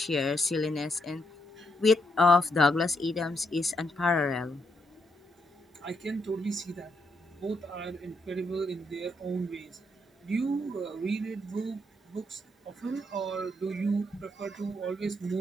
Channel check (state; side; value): normal; both; correlation 0.78